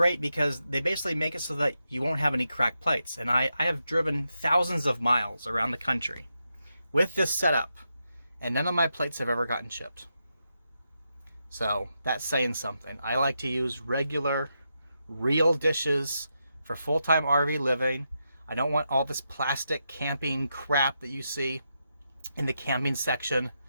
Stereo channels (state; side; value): inverted; both; correlation -0.85